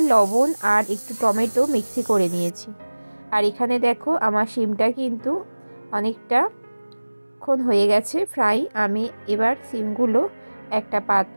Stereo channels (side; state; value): both; inverted; correlation -1.00